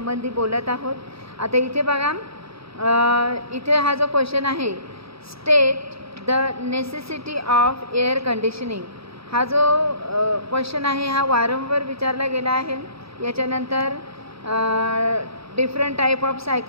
बोलत आहोत। आता इथे बघा, इथे हा जो क्वेश्चन आहे, state the necessity of air conditioning, हा जो क्वेश्चन आहे हा वारंवार विचारला गेला आहे। याच्यानंतर डिफरंट टाईप ऑफ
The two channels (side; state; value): left; late; 0.77 ms